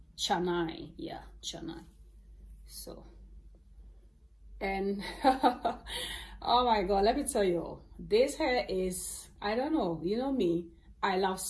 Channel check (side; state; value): both; identical; correlation 1.00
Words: Chennai. Yeah, Chennai. So, and oh my god, let me tell you, this hair is, I don't know, you know me, I love